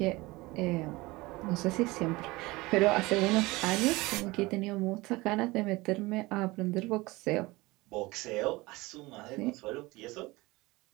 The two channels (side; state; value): left; quieter; 21.7 dB